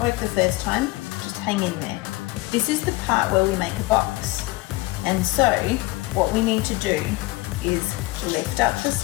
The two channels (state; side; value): quieter; right; 21.0 dB